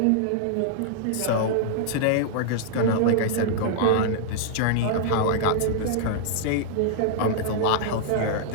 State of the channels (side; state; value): both; different; correlation -0.01